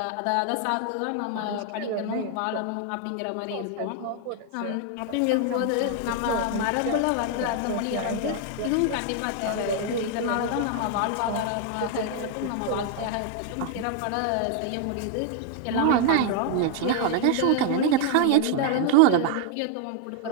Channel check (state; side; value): different; both; correlation 0.00